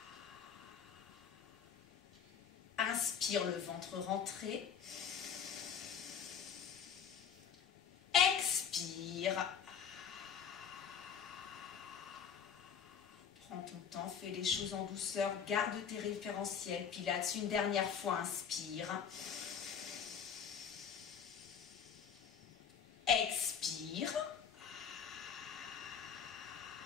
Inspire, le ventre rentré. Expire. Prends ton temps, fais les choses en douceur, garde tes référentiels. Pilates, une dernière fois, inspire. Expire.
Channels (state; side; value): quieter; right; 7.5 dB